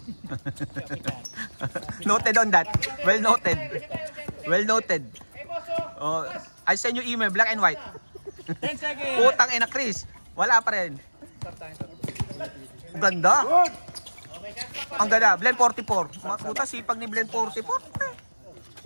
Noted on that. Well noted. Well noted. Oh, I send you email, black and white. 10 seconds! Putang ina, Chris. Wala pa rin. Ganda. Ang ganda. Blend 44. Mga puta, sipag ni Blend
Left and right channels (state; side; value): inverted; both; correlation -1.00